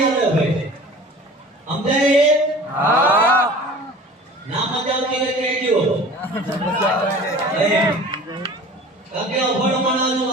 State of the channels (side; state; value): both; normal; correlation 0.43